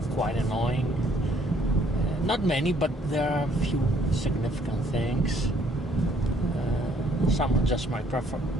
quite annoying. Not many, but there are a few significant things. Some are just my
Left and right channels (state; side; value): normal; both; correlation 0.64